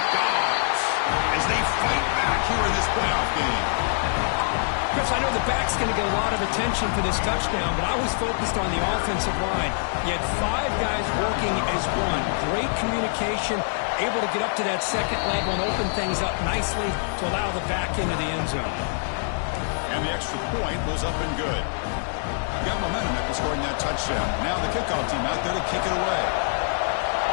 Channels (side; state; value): right; silent; digital silence